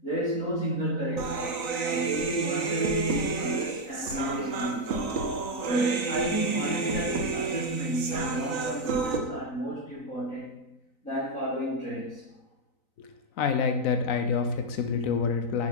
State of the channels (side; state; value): right; late; 3.9 ms